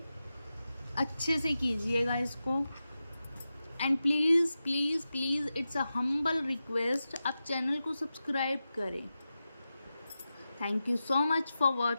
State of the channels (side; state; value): both; inverted; correlation -0.92